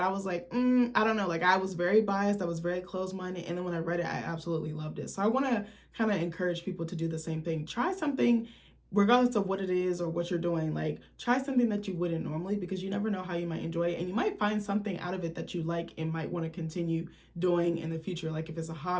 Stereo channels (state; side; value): identical; both; correlation 1.00